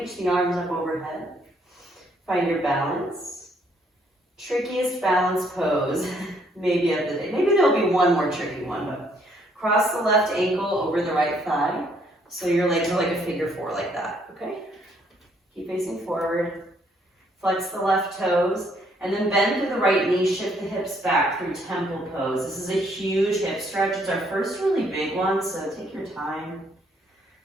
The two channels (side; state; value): both; normal; correlation 0.68